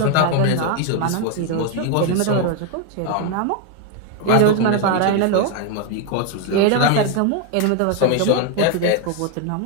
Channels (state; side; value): different; both; correlation 0.01